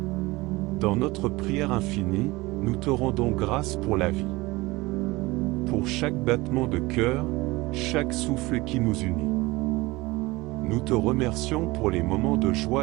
Dans notre prière infinie, nous te rendons grâce pour la vie, pour chaque battement de cœur, chaque souffle qui nous unit. Nous te remercions pour les moments de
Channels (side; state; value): left; quieter; 21.5 dB